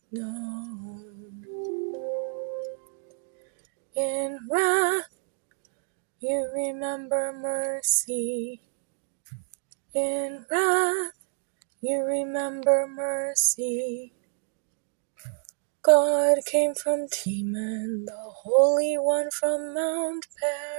known. In wrath, you remember mercy. In wrath, you remember mercy. God came from Teman, the Holy One from Mount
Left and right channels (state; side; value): silent; left; digital silence